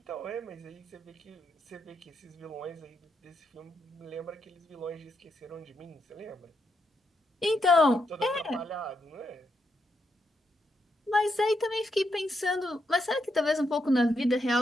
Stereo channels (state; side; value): normal; both; correlation 0.81